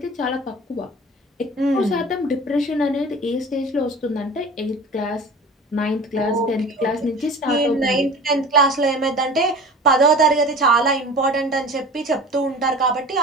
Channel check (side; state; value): both; normal; correlation 0.39